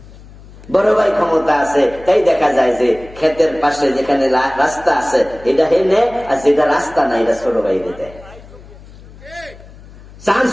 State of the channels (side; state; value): left; noise; hum, 20 dB below the sound